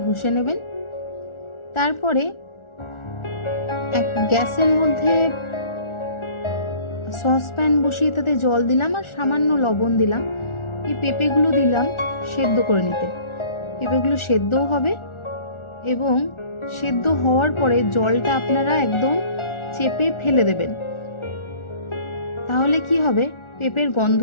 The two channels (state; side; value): late; right; 1.4 ms